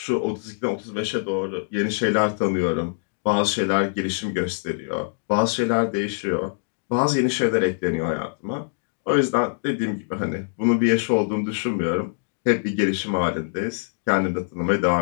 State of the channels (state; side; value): silent; right; digital silence